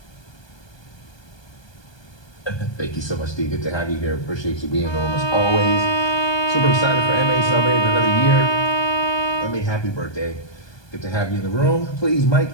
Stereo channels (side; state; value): right; late; 1.2 ms